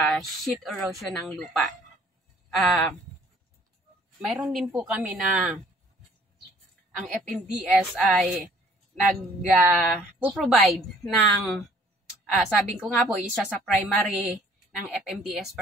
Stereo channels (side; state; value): both; normal; correlation 0.57